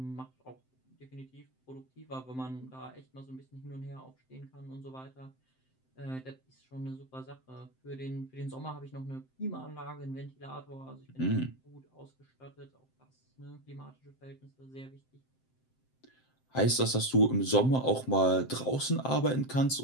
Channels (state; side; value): late; right; 7.7 ms